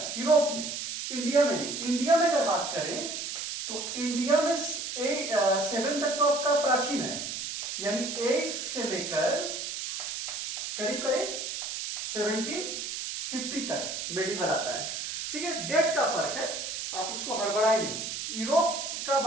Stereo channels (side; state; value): right; noise; hiss, 5 dB below the sound